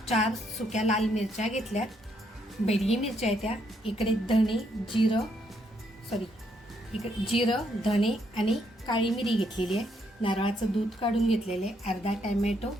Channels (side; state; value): both; normal; correlation 0.74